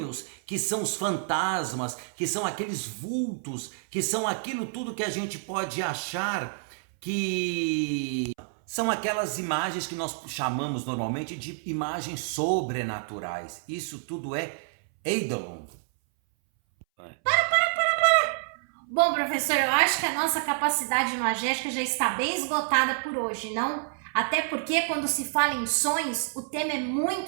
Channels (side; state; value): left; silent; 59 dB below the other